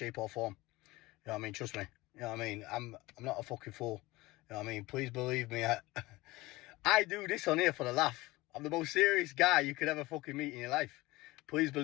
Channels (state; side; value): quieter; right; 20.3 dB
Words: or form. You know what I mean? Trust me. You know what I mean? I'm not a fucking fool. You know what I mean? Please believe me. I do this on here for the laugh. I'm the most serious guy you could ever fucking meet in your life. Please